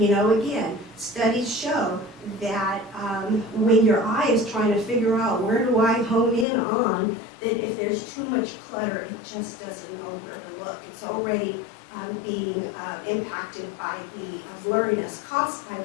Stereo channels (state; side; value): drops out; right; at 6.5 s